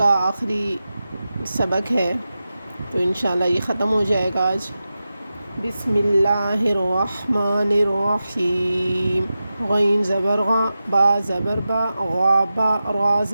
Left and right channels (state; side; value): inverted; both; correlation -0.93